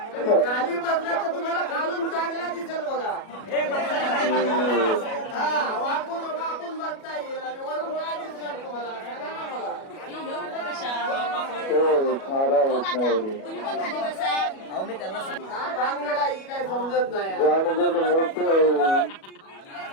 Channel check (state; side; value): late; right; 37 ms